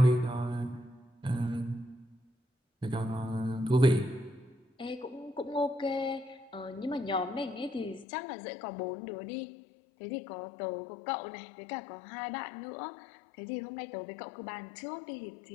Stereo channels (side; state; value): right; drops out; at 8.1 s